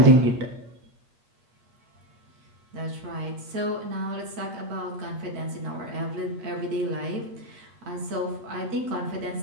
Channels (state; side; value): late; left; 8.4 ms